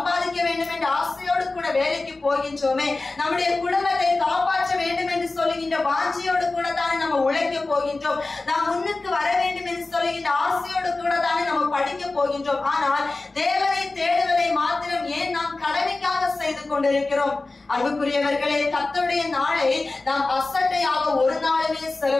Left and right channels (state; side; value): quieter; right; 3.3 dB